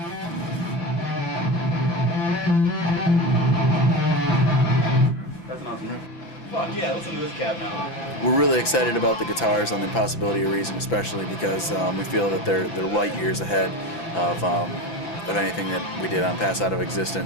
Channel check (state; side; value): late; right; 5.9 ms